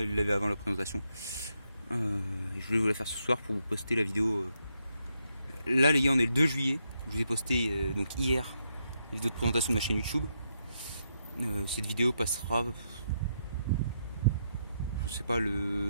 le laver avant la présentation. Je voulais vous la faire ce soir pour vous poster la vidéo. Là les gars, on est le 2 juillet. Je vous ai posté donc hier la vidéo de présentation de ma chaîne YouTube. Cette vidéo passera, je sais pas,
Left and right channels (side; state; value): both; inverted; correlation -0.80